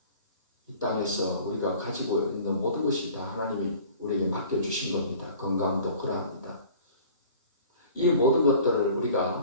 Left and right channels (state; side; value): inverted; both; correlation -0.47